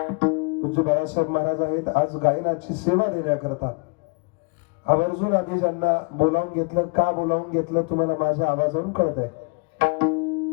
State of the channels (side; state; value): right; quieter; 30.6 dB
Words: पूज्य बाळासाहेब महाराज आहेत। आज गायनाची सेवा देण्याकरता आवर्जून आधी ज्यांना बोलावून घेतलं, का बोलावून घेतलं तुम्हाला माझ्या आवाजावरून कळत आहे।